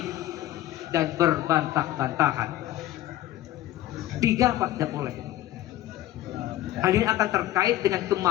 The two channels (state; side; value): quieter; right; 14.3 dB